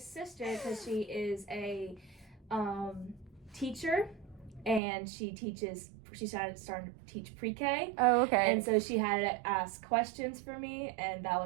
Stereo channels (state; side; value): drops out; left; at 4.8 s